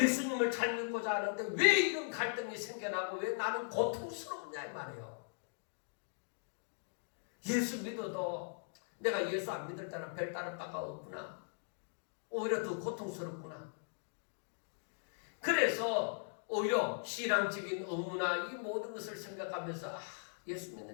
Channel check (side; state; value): right; silent; digital silence